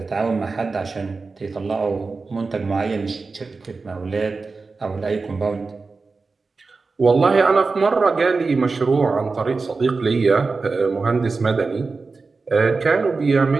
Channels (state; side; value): quieter; left; 4.1 dB